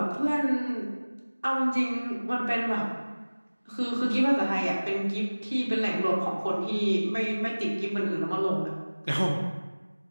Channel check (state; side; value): inverted; both; correlation -1.00